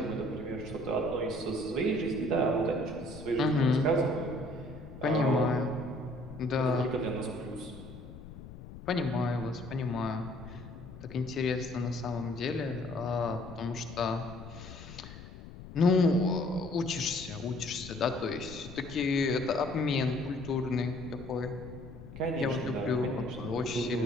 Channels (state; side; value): noise; left; rumble, 14 dB below the sound